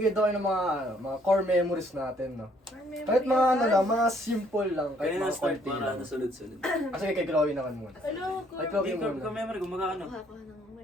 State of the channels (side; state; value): both; normal; correlation 0.65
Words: daw kayo ng mga core memories natin, no? Kahit mga mga simple lang. Kahit Kaya na mga start konti para lang. nasunod-sunod. Sige, kay Chloe naman muna. Hello, Ay, core, Chloe Hindi, muna. ka-memory, gumaga ano. kuha ng